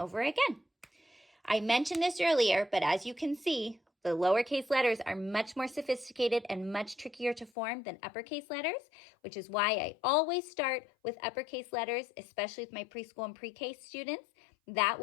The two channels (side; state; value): right; drops out; at 7.5 s